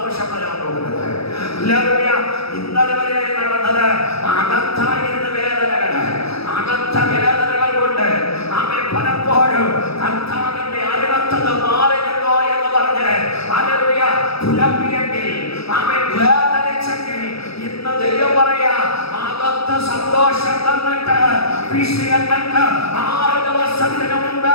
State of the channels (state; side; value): late; right; 0.77 ms